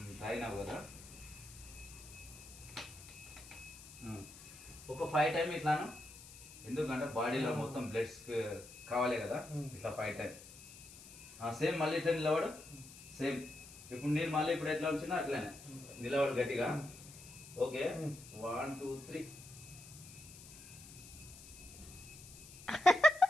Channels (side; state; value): left; noise; hiss, 17 dB below the sound